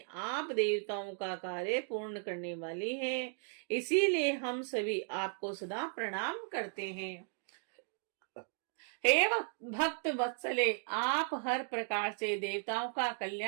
आप देवताओं का कार्य पूर्ण करने वाली हैं, इसीलिए हम सभी आपको सदा प्रणाम करते हैं। हे भक्त वत्सले, आप हर प्रकार से देवताओं का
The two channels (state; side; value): silent; left; 54 dB below the other